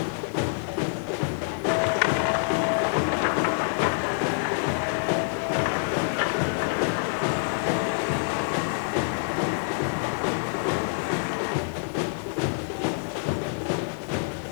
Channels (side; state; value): right; silent; 60 dB below the other